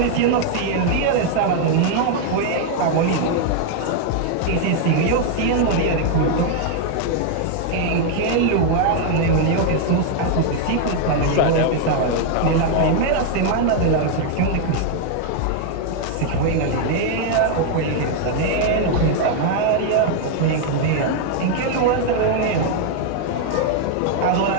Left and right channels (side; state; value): both; different; correlation 0.00